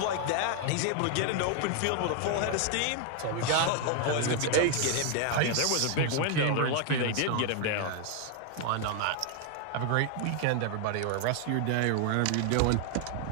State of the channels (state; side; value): different; both; correlation 0.01